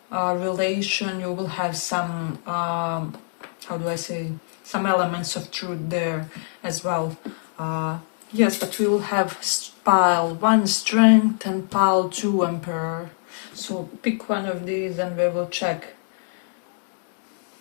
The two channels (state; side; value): silent; right; digital silence